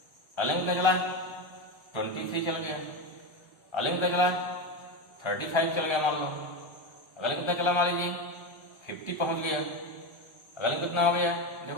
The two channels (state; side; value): late; right; 1.3 ms